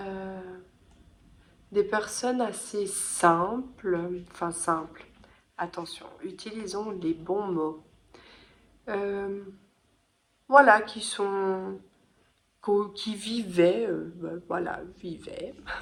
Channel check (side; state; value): both; identical; correlation 1.00